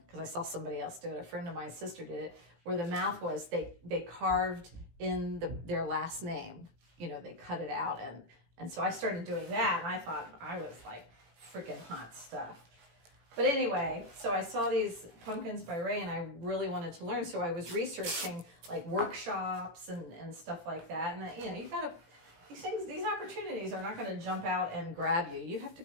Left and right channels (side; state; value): left; late; 18 ms